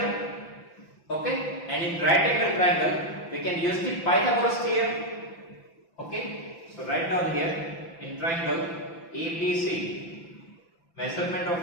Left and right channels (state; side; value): late; right; 5.9 ms